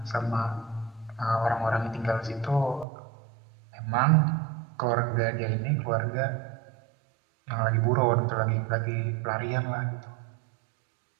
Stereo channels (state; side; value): drops out; left; at 2.9 s